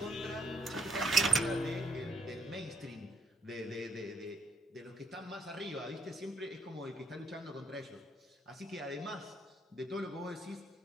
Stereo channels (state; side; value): normal; both; correlation 0.70